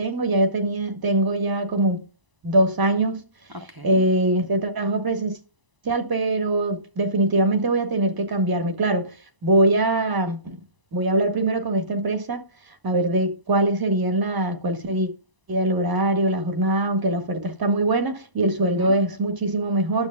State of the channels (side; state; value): left; late; 1.0 ms